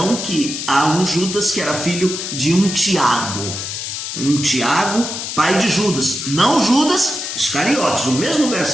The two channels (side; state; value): left; noise; hiss, 5 dB below the sound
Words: que há um Judas que era filho de um Tiago, pai de Judas, não Judas Iscariotes. O mesmo